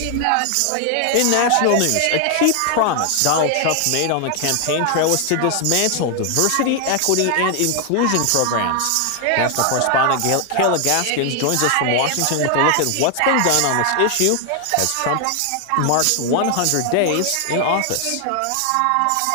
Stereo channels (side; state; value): both; different; correlation 0.00